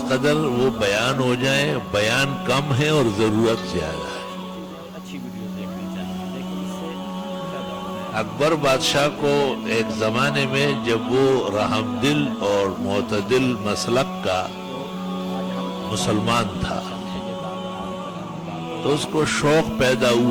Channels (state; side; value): identical; both; correlation 1.00